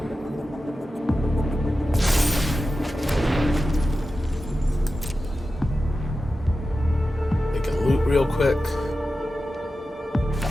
They can loot real quick.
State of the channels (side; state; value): both; normal; correlation 0.93